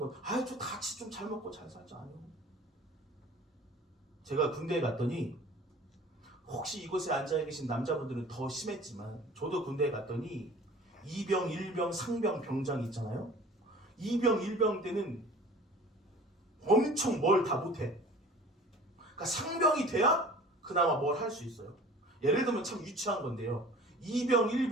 저 같이 좀 잘 먹고 잘 살자 아니요. 제가 군대에 갔더니 혹시 이곳에 앉아 계신 남자분들은 더 심했지만 저도 군대에 갔더니 2병, 1병, 상병, 병장 있잖아요. 2병, 1병 때는 엄청 뭘 다 못해. 그러니까 상병이 돼야 그나마 뭘 할 수 있어요. 예를 들면 참 유치한 건데요. 2병,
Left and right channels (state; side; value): normal; both; correlation 0.45